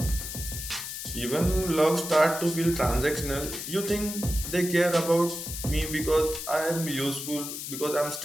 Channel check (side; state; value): left; noise; hiss, 7 dB below the sound